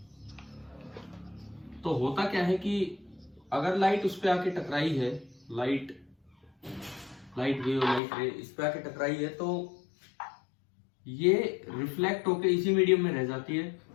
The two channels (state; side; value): drops out; right; at 8.0 s